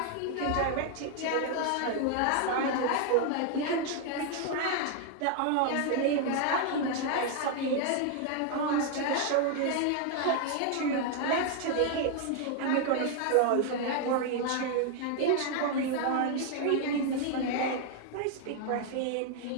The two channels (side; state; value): both; different; correlation 0.00